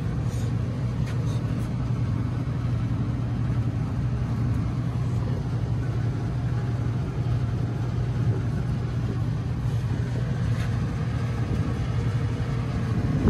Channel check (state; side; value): identical; both; correlation 1.00